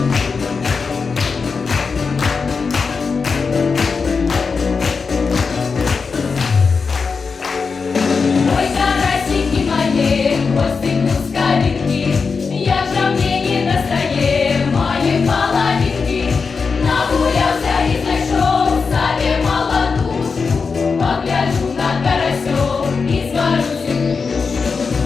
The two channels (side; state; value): right; quieter; 5.0 dB